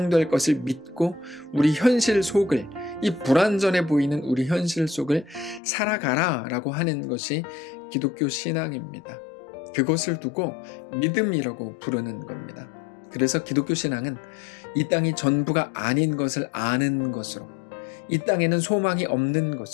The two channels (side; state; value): right; drops out; at 5.6 s